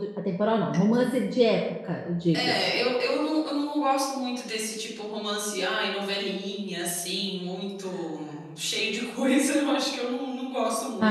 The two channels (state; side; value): identical; both; correlation 1.00